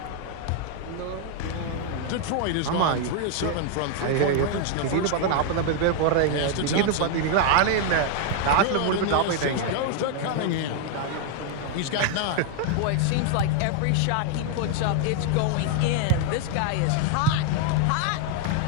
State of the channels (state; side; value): different; both; correlation 0.00